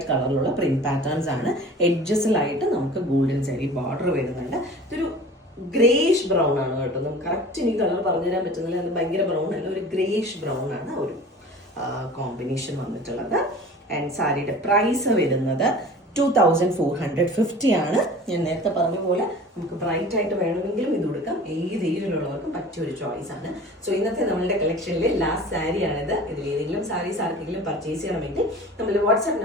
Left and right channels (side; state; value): both; normal; correlation 0.41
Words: കളറിലുള്ള പ്രിന്റ് പാറ്റേൺസ് ആണ്. എഡ്ജസിലായിട്ട് നമുക്ക് ഗോൾഡൻ സാരി ബോർഡർ വരുന്നുണ്ട്. ഇതൊരു ഗ്രേഷ് ബ്രൗൺ ആണ് കേട്ടോ. നമുക്ക് കറക്റ്റ് എനിക്ക് കളർ പറഞ്ഞു തരാൻ പറ്റുന്നില്ല, അത് ഭയങ്കര ബ്രൗൺ അല്ല, ഒരു ഗ്രേഷ് ബ്രൗൺ ആണ് ഒരു കോമ്പിനേഷൻ വന്നിട്ടുള്ളത്. ആൻഡ് സാരിയുടെ പ്രൈസ് വരുന്നത് 2450 ആണ്. ഞാൻ നേരത്തെ പറഞ്ഞ പോലെ നമുക്ക് ബ്രൈറ്റ് ആയിട്ട് വേണമെങ്കിലും ഇത് കൊടുക്കാം, ഏത് ഏജിലുള്ളവർക്കും പറ്റിയ ഒരു ചോയ്സ് ആണ്. സോ ഇന്നത്തെ നമ്മളുടെ കളക്ഷനിലെ ലാസ്റ്റ് സാരിയാണിത്. ഇതിൽ ഏതെങ്കിലും സാരീസ് ആർക്കെങ്കിലും പർച്ചേസ് ചെയ്യണമെങ്കിൽ നമ്മൾ വാട്സ്ആപ്പ്